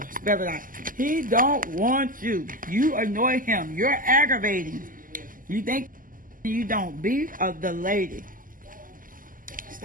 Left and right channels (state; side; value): late; left; 0.40 ms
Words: Spell it out. He don't want you. You annoy him. You're aggravating. You think you don't. Be of the lady.